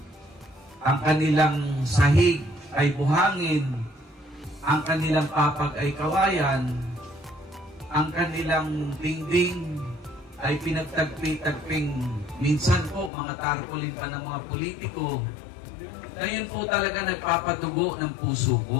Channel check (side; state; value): right; drops out; at 13.1 s